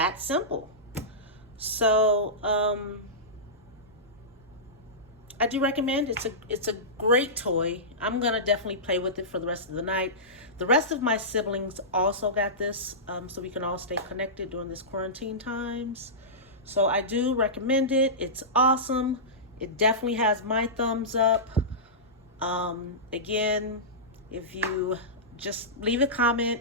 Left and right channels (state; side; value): normal; both; correlation -0.17